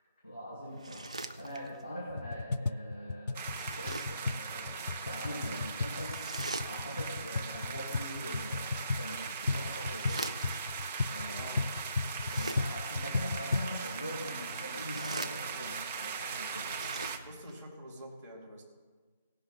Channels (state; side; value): inverted; both; correlation -0.71